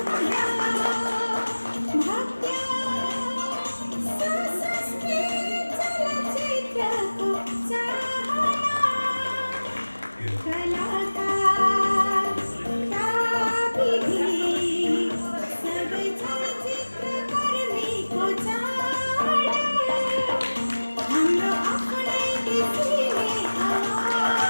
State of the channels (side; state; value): both; inverted; correlation -1.00